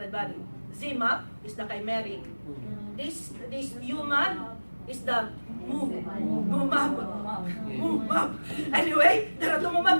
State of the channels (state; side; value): inverted; both; correlation -1.00